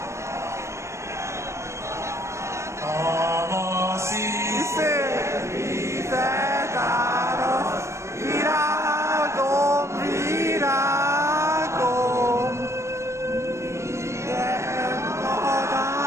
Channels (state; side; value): late; left; 0.13 ms